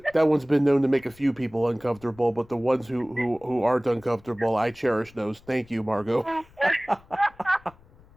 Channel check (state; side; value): noise; left; rumble, 26 dB below the sound